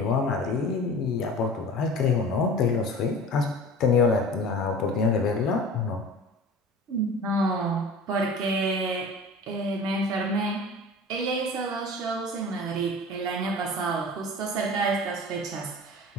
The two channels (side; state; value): both; normal; correlation 0.38